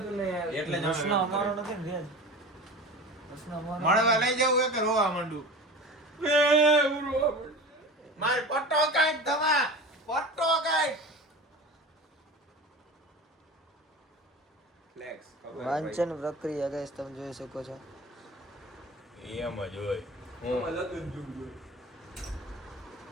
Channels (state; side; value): normal; both; correlation 0.34